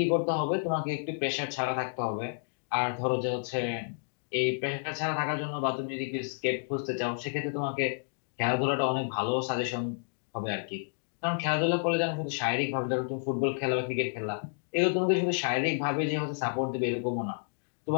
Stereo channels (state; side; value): silent; right; digital silence